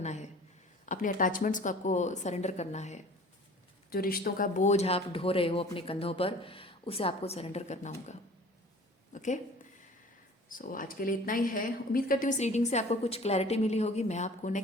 है, अपने अटैचमेंट्स को आपको सरेंडर करना है। जो रिश्तों का बोझ आप ढो रहे हो अपने कंधों पर, उसे आपको सरेंडर करना होगा। ओके, सो आज के लिए इतना ही है। उम्मीद करती हूँ इस रीडिंग से आपको कुछ क्लैरिटी मिली होगी। मैं आपको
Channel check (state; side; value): normal; both; correlation 0.46